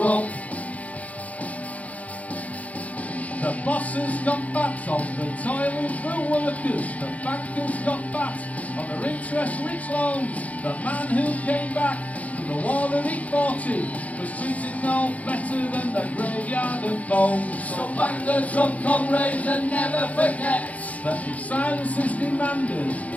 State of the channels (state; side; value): late; right; 0.069 ms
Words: The bosses got fat on the toiling for workers. The bankers got fat on their interest-rich loans. The man who came back from the war that he fought in was treated no better than the graveyard of bones. So bang the drum, comrades, and never forget that if silence is demanded,